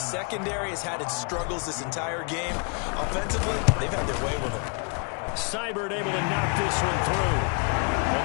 has had its struggles this entire game. Offensively, they've had their way with it. Seibert able to knock this one through. And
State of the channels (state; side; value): quieter; right; 37.6 dB